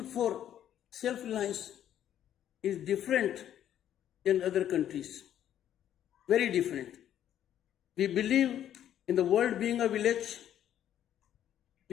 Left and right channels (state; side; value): quieter; right; 10.8 dB